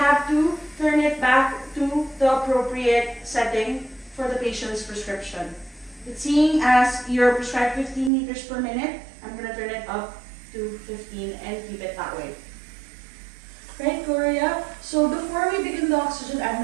to turn it back to the appropriate setting for the patient's prescription. But seeing as you're prescribed 15 liters per minute, I'm going to turn it up to 15 and keep it that way. Right, Gloria? So before we begin the oxygen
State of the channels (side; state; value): left; drops out; at 8.1 s